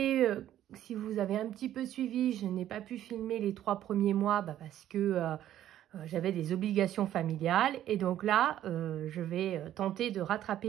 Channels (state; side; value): quieter; left; 12.1 dB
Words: si vous avez un petit peu suivi, je n'ai pas pu filmer les 3 premiers mois parce que j'avais des obligations familiales. Et donc là, je vais tenter de